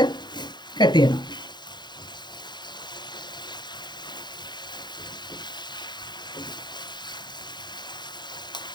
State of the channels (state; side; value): late; right; 0.21 ms